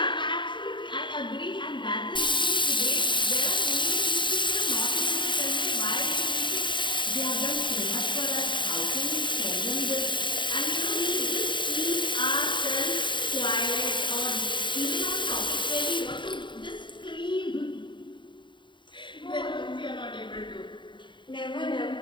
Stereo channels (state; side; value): late; right; 0.23 ms